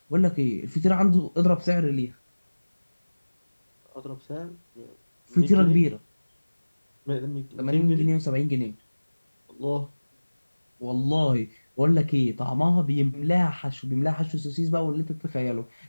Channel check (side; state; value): both; inverted; correlation -1.00